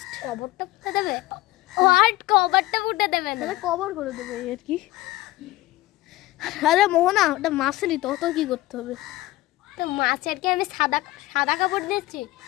কবরটা পুঁতে দেবে। হোয়াট, কবরটা পুঁতে দেবে না, কবর করে দেবে আর কি। আরে মোহনা, ওটা মাছেরই তো, অত কি করতে হবে? তো মাছের কি আমি সাদা সাদা কাপড় দিচ্ছি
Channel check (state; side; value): quieter; right; 17.7 dB